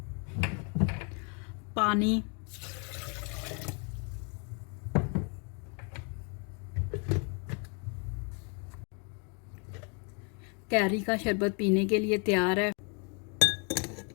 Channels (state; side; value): quieter; right; 36.7 dB